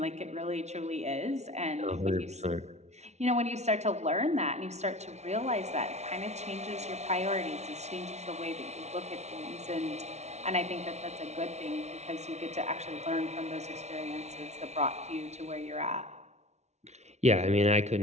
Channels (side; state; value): left; late; 0.32 ms